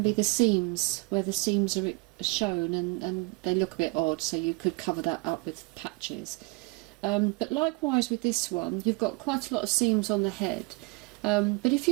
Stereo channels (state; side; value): quieter; left; 26.4 dB